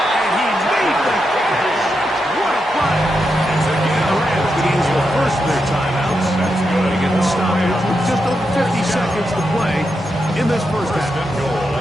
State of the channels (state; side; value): normal; both; correlation 0.85